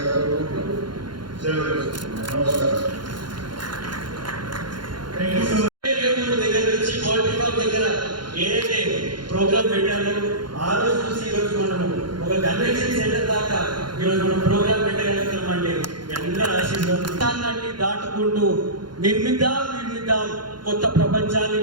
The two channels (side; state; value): left; late; 0.71 ms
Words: ఏదైతే ప్రోగ్రామ్ పెట్టాలో ఆ రోజు చూసి ఈరోజు మనము ఒక కన్వెన్షన్ సెంటర్ దాకా ఈరోజు మనం ప్రోగ్రామ్ పెట్టగలుగుతామండి. అందరూ ఆశీర్వాదాన్ని దాటుకుంటూ నిర్మిద్దాం కొత్త ప్రపంచాన్ని